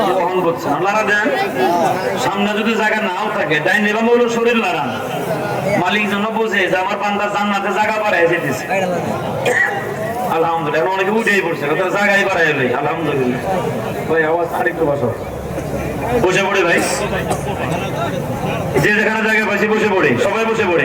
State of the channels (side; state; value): both; identical; correlation 1.00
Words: বহন করছে লাড়া দেন। সামনে যদি জায়গা নাও থাকে ডাইন নিলাম হলো শরীর লাড়ান, মালিক যেন বোঝে যে আমার বান্দা জান্নাতে জায়গা বাড়ায় যেতেছে। আলহামদুলিল্লাহ, অনেকে উঠেই পড়ছে জায়গায় বাড়ায় ভাই। আলহামদুলিল্লাহ ভাই, আওয়াজ আরেকটু বসো, বসে পড়ে ভাই, যে যেখানে জায়গা পাইছি বসে পড়ে, সবাই বসে পড়ে।